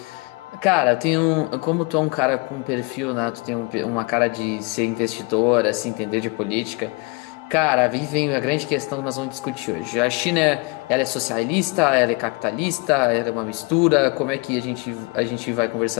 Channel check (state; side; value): quieter; right; 28.4 dB